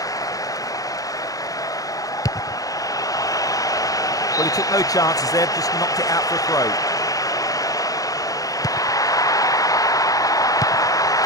Well, he took no chances there, just knocked it out for a throw.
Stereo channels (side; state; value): right; late; 0.17 ms